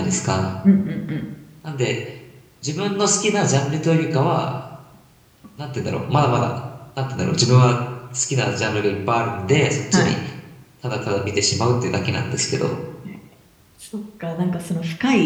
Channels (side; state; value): both; identical; correlation 1.00